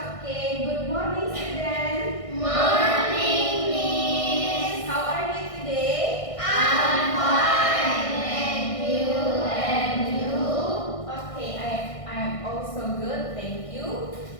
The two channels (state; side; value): late; right; 1.6 ms